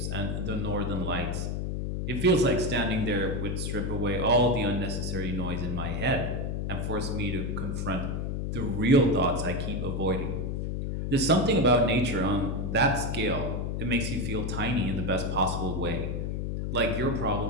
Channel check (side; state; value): left; noise; hum, 2 dB below the sound